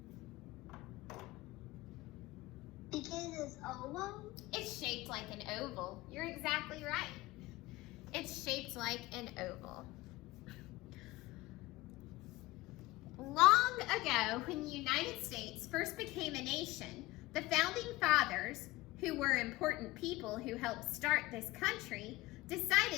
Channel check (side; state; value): right; quieter; 19.7 dB